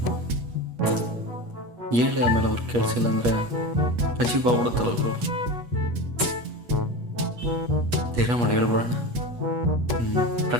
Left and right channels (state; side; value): late; left; 8.3 ms